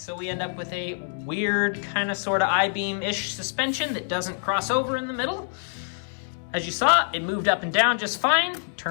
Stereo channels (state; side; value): silent; right; digital silence